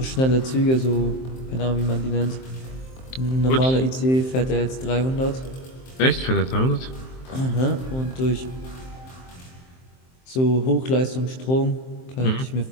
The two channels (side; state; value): right; late; 23 ms